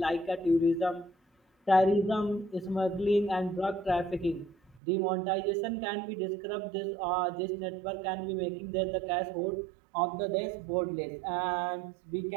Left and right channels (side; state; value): left; drops out; at 4.8 s